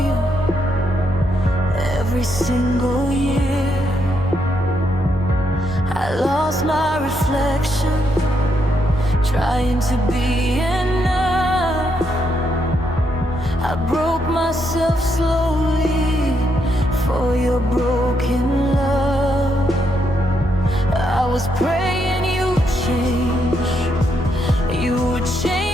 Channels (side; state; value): both; normal; correlation 0.78